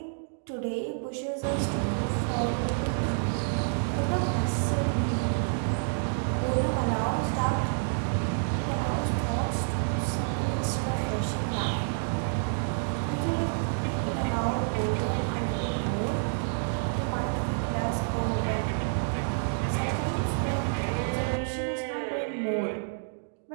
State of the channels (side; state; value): left; silent; digital silence